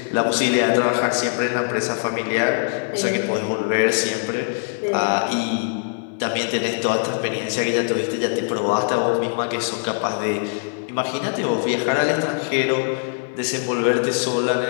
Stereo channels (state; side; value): silent; right; 63 dB below the other